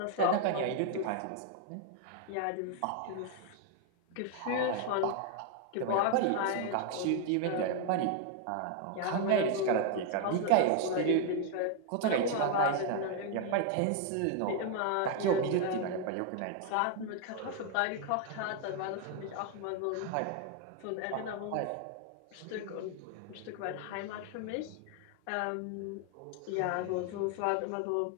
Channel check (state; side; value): different; both; correlation 0.00